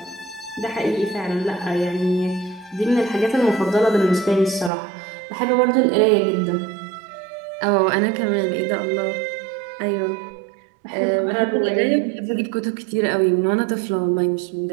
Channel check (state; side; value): drops out; left; at 4.7 s